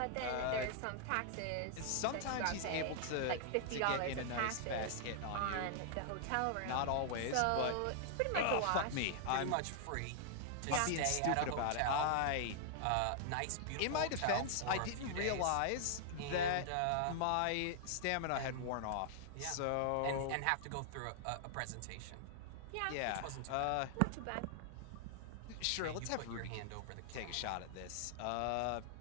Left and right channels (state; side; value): different; both; correlation -0.01